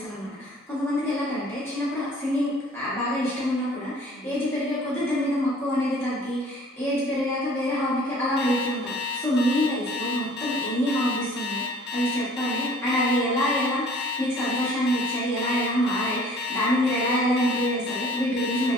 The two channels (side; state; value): both; normal; correlation 0.52